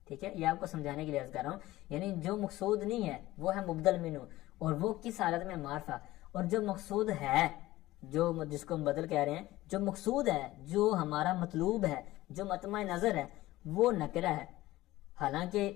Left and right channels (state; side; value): quieter; right; 17.0 dB